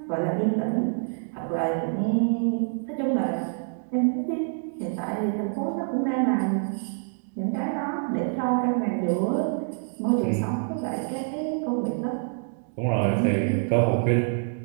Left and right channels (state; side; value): silent; left; 61 dB below the other